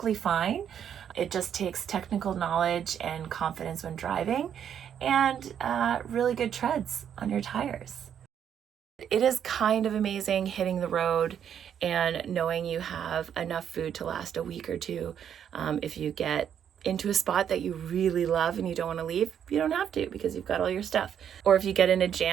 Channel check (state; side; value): quieter; left; 8.9 dB